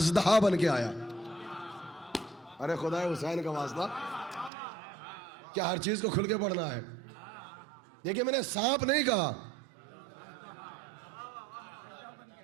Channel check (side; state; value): left; drops out; at 4.5 s